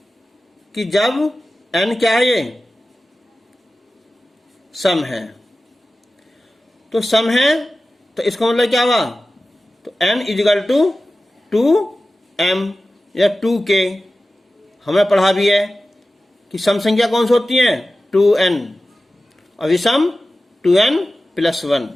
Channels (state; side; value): normal; both; correlation 0.95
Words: कि जब n क्या है ये सम है, तो सम है तो इसका मतलब क्या हुआ तो n इजिकल टू 2m या 2k। हमने पढ़ा भी है कि सम संख्या कौन सी होती है 2n और विषम 2n प्लस 1।